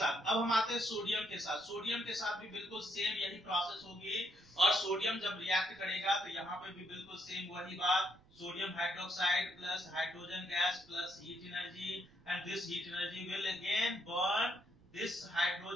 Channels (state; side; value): noise; right; rumble, 27 dB below the sound